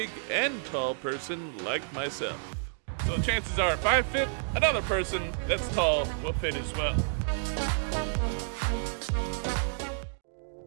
and tall person like myself. So chances are if I fit, another person that's tall will fit as well.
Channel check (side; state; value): left; silent; digital silence